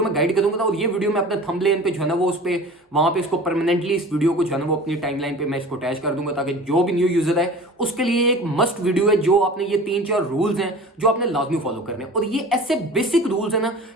में गाइड करूंगा और ये वीडियो मैं अपने थंबनेल पे जो है ना वो उस पे वहां पे इसको परमानेंटली इस वीडियो को जो है ना वो अपनी टाइमलाइन पे मैं इसको अटैच कर दूंगा, ताकि जो भी न्यू यूजर है उसके लिए एक मस्ट वीडियो है। जो आपने ये 3-4 रूल्स हैं जो आपने लाजमी फॉलो करने हैं और ये ऐसे बेसिक रूल्स है ना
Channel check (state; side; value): normal; both; correlation 0.40